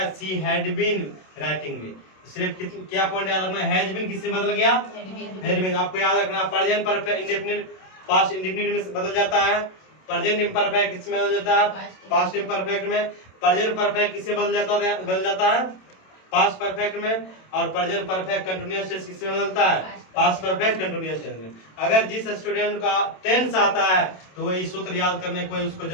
सी हैड बीन राइटिंग मी। सिर्फ क्या पॉइंट याद रखना? हैज बीन किससे बदल गया? Had been. आपको याद रखना present perfect indefinite past indefinite में बदल जाता है। प्रेजेंट इम्परफेक्ट किसमें बदल जाता है? पास्ट इम्परफेक्ट में। प्रेजेंट परफेक्ट किससे बदल जाता है? पास्ट परफेक्ट में। और प्रेजेंट परफेक्ट कंटिन्यूअस टेंस किससे बदलता है? पास्ट परफेक्ट कंटिन्यूअस टेंस में। अगर जिस स्टूडेंट का टेंस आता है तो वही सूत्र याद करने की कोई उसको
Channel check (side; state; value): right; late; 27 ms